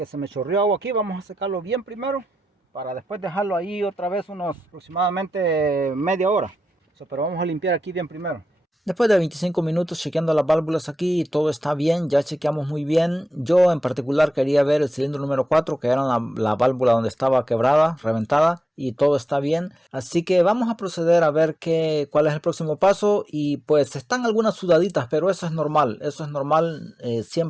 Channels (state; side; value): normal; both; correlation 0.91